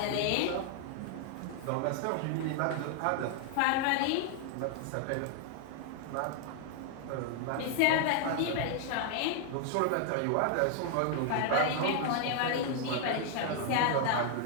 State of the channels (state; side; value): different; both; correlation 0.00